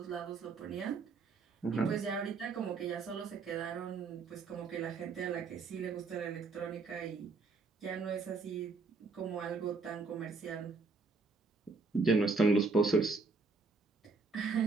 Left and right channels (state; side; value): quieter; left; 4.2 dB